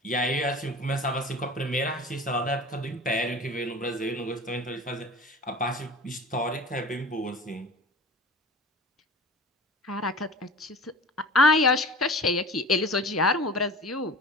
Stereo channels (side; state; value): both; normal; correlation 0.38